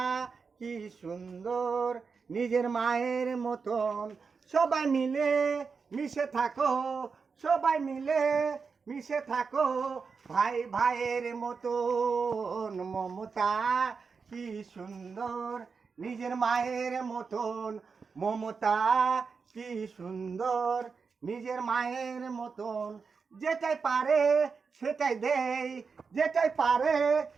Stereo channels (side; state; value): left; quieter; 5.2 dB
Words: কি সুন্দর, নিজের মায়ের মতন। সবাই মিলে মিশে থাকো, সবাই মিলে মিশে থাকো ভাই ভাইয়ের মতন। মমতা কি সুন্দর, নিজের মায়ের মতন। মমতা কি সুন্দর, নিজের মায়ের মতন। যেটাই পারে সেটাই দেই, যেটাই পারে